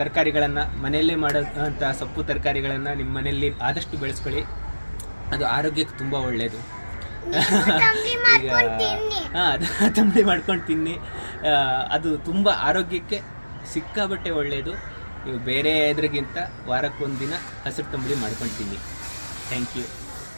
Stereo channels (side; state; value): both; inverted; correlation -1.00